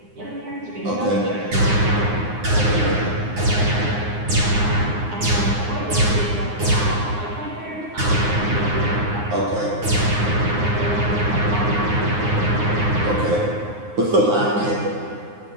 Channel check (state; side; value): late; left; 9.7 ms